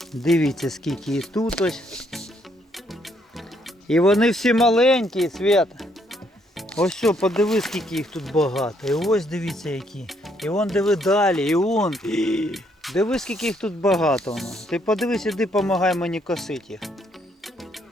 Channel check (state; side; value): normal; both; correlation 0.71